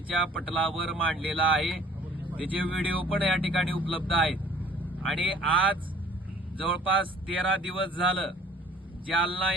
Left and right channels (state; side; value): normal; both; correlation 0.52